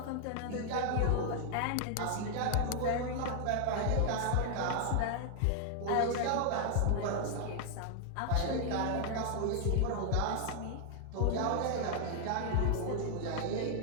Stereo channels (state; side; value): different; both; correlation 0.00